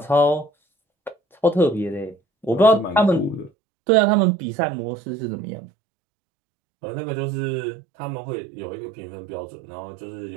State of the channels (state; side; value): drops out; left; at 3.5 s